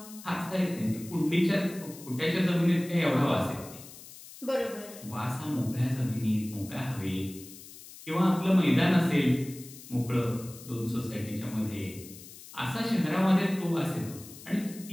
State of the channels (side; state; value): left; noise; hiss, 17 dB below the sound